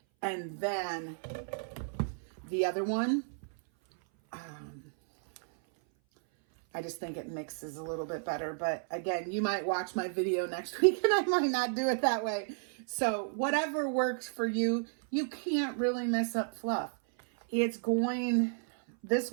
And then the other one, I just think it mixes a little bit better. But again, you might watch my video next week and I might not do it that way. So whatever works for you, you can't really mess up fluff. This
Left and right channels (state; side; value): silent; left; 56 dB below the other